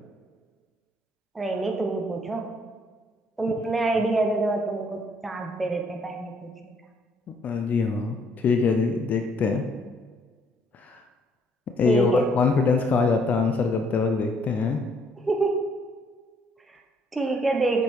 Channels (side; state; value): both; normal; correlation 0.67